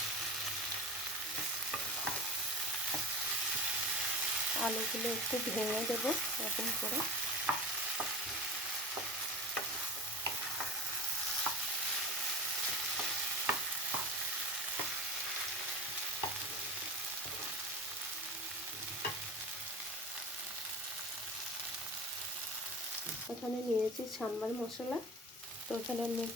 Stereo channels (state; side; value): normal; both; correlation 0.30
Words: আলুগুলো একটু ভেঙে দেবো এরকম করে। এখানে নিয়েছি সাম্বার মশলা, তো এখানে আমি